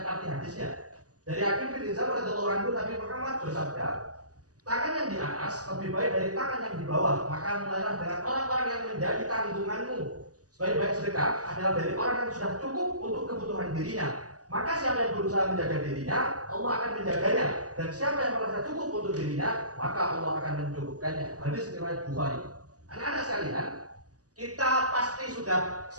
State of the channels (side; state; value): left; late; 0.67 ms